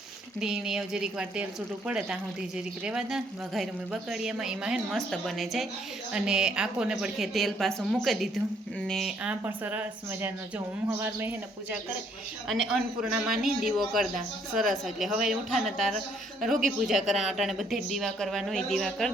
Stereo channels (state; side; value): normal; both; correlation 0.67